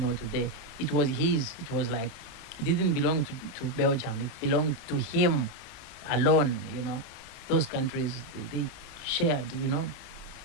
today. It was his. It was like, it didn't belong to Belgium. It belonged to him alone, Those countries, they shared,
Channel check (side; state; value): left; noise; rumble, 23 dB below the sound